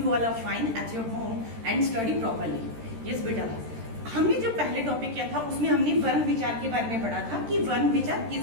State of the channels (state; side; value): late; left; 13 ms